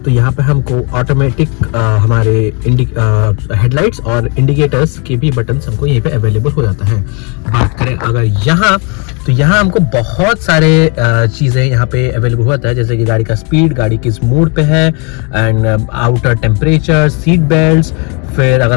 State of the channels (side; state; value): right; quieter; 33.8 dB